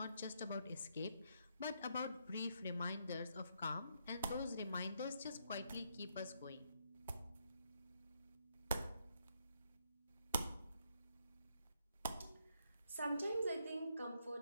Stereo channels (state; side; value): inverted; both; correlation -0.76